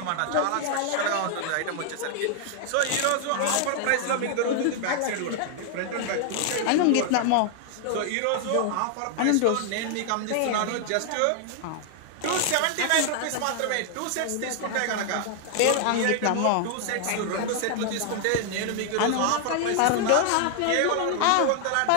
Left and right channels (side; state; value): both; different; correlation 0.00